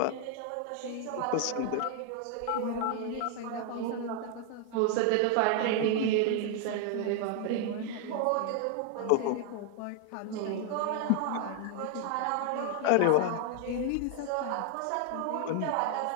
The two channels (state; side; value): different; both; correlation 0.00